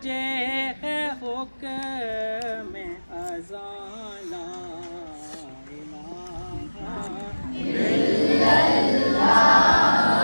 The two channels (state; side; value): inverted; both; correlation -1.00